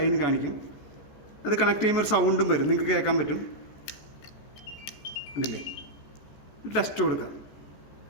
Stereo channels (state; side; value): late; right; 14 ms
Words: കാണിക്കും. അത് കണക്ട് ചെയ്യുമ്പോൾ ഒരു സൗണ്ടും വരും, നിങ്ങൾക്ക് കേൾക്കാൻ പറ്റും. കണ്ടില്ലേ, ടെസ്റ്റ് കൊടുക്കാം.